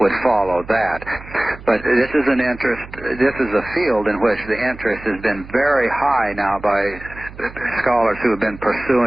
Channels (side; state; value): right; noise; hum, 17 dB below the sound